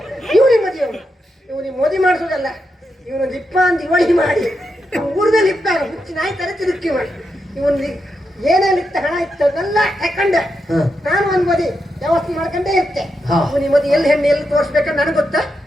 ಇವನಿಗೆ ಮದುವೆ ಇವನಿಗೆ ಮದುವೆ ಮಾಡಿಸೋದಲ್ಲ, ಇವನು ಲಿಪ್ಪ ಅಂತ ಇವಳಿ ಮಾಡಿ ಊರ್ದ ಲಿಪ್ಪ ಹುಚ್ಚಿ ನಾಯಿ ತರ ತಿರುಗಿ ಮಾಡಿ ಇವನ್ ಏನೇನು ಇತ್ತ ಹಣ ಇತ್ತದೆಲ್ಲ ತಕೊಂಡೆ. ನಾನು ಒಂದ್ ಮದಿ ವ್ಯವಸ್ಥೆ ಮಾಡ್ಕೊಂಡೇ ಇರ್ತೆ. ಇವನಿಗೆ ಮದುವೆ ಎಲ್ಲಿ ಹೆಣ್ಣು ಎಲ್ಲಿ ತೋರಿಸ್ಬೇಕಂತ ನನಗೆ ಗೊತ್ತಾ,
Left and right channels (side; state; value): both; normal; correlation 0.85